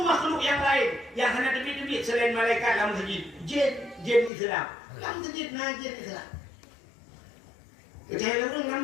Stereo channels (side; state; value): right; drops out; at 4.3 s